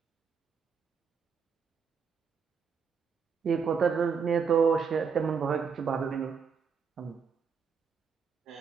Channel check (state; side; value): quieter; left; 6.1 dB